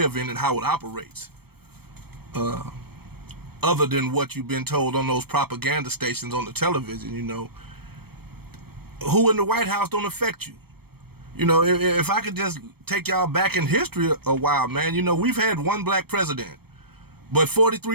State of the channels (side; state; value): left; late; 0.96 ms